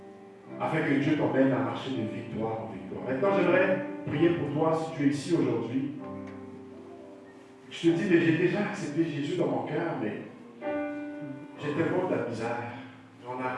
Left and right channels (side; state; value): both; identical; correlation 1.00